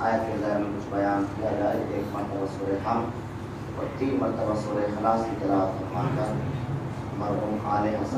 کے ذریعے میں کچھ بیان کیا جائے. ایک مرتبہ سورہ حمد اور 3 مرتبہ سورہ اخلاص کی تلاوت فرما کر مرحوم آل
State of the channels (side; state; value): both; identical; correlation 1.00